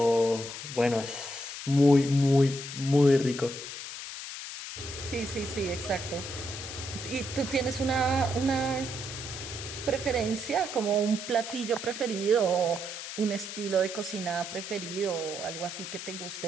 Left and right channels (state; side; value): noise; left; hiss, 8 dB below the sound